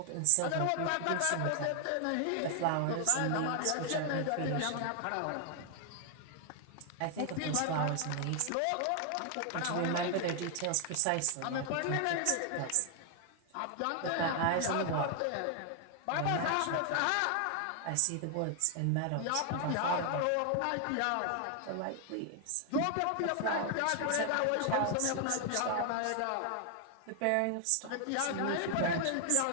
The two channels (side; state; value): both; different; correlation 0.00